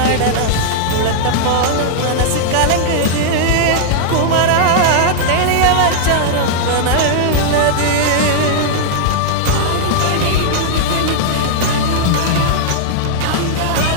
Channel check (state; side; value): different; both; correlation -0.01